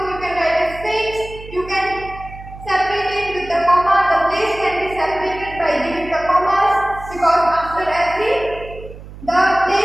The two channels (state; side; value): noise; right; hum, 15 dB below the sound